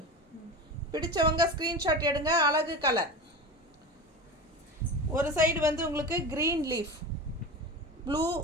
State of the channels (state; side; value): normal; both; correlation 0.28